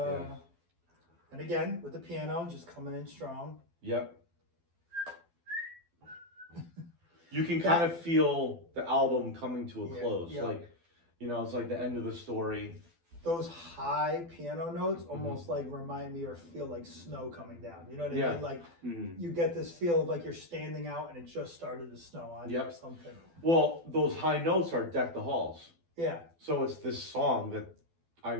And again, with the piano just coming in strong. Yep. You can kind of feel the album coming to a close. Yeah. Like, you know, it's like the end of the story. Those high piano notes almost like remind me or feel like snow coming down. You know what I mean? Like you get this feel of like you're standing out and it just started to snow on you or something. Well, those high notes are Deck the Halls. Yeah. So it's this song that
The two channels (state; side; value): late; left; 12 ms